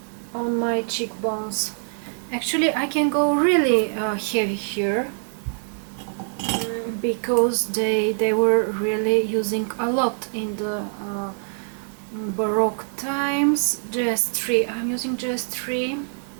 on my cheekbones. Actually, I can go really heavy here, because they were really using a lot in the Baroque times. Jeffree, I'm using Jeffree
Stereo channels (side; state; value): left; silent; digital silence